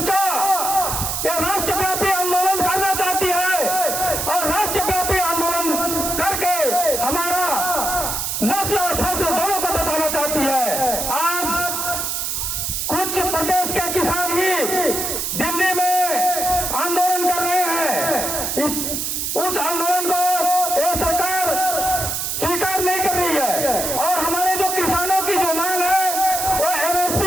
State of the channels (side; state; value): right; noise; hiss, 2 dB below the sound